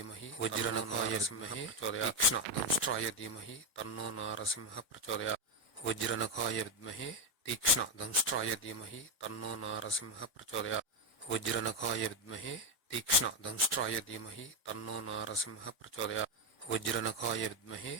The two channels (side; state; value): both; normal; correlation 0.07